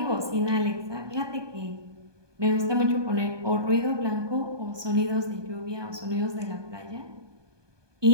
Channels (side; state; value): left; late; 1.2 ms